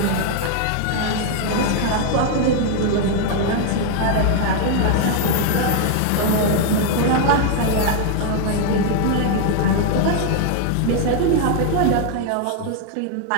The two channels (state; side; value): different; both; correlation 0.00